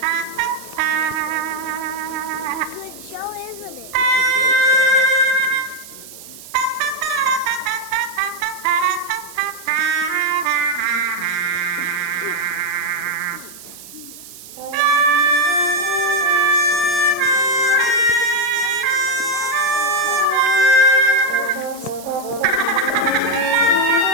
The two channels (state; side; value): noise; right; hiss, 17 dB below the sound